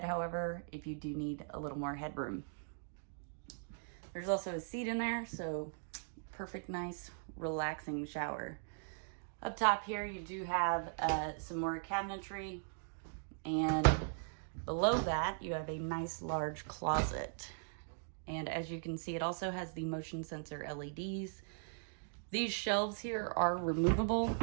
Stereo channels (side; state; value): left; silent; digital silence